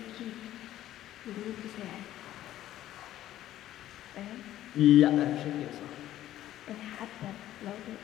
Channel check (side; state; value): right; quieter; 13.2 dB